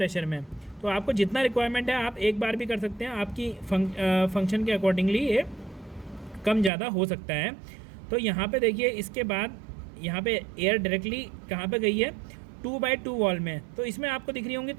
में। तो आपको जितना रिक्वायरमेंट है आप 1 बार भी कर सकते हैं, आपकी फंक्शन के अकॉर्डिंगली ये कम ज़्यादा हो सकता है। तो यहाँ पे देखिए, इसके बाद यहाँ पे एयर डायरेक्टली कहाँ पे गई है, 2/2 वॉल में। तो इसमें आपको दिख रही होंगी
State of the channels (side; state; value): left; drops out; at 6.7 s